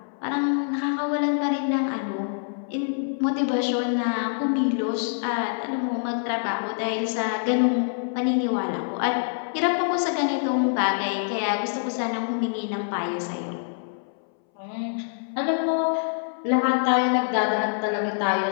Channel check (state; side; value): silent; right; 61 dB below the other